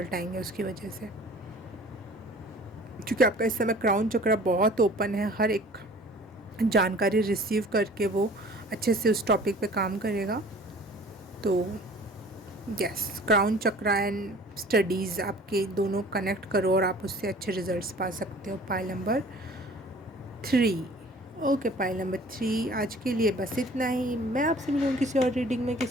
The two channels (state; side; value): normal; both; correlation 0.48